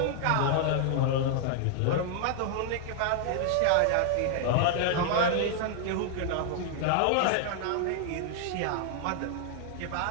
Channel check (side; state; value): both; different; correlation -0.01